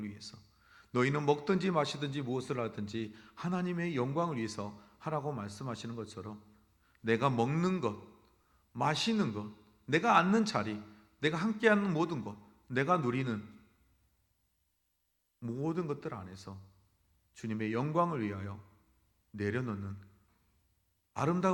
위해서, 너희는 먹든지 마시든지 무엇을 하든지 하나님의 영광을 위해서 하라고 말씀하시는 것처럼 내가 먹는 것, 마시는 것, 내가 앉는 자리, 내가 함께하는 모든 것, 내가 누리는 모든 것들 안에서 주님의 영광을 위하여 내려놓는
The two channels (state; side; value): identical; both; correlation 1.00